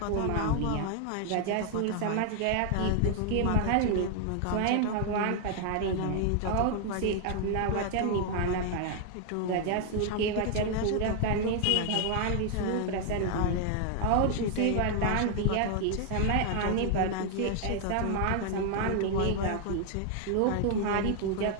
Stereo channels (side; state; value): both; different; correlation 0.00